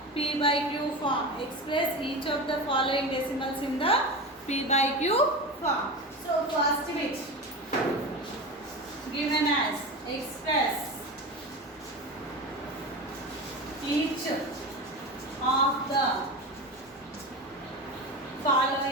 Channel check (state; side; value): normal; both; correlation 0.25